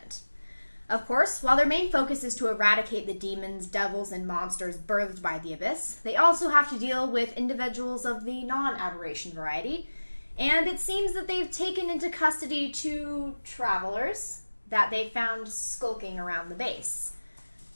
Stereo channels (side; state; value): both; inverted; correlation -1.00